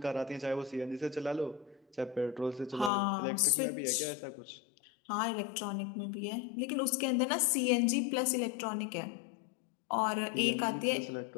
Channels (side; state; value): right; drops out; at 2.9 s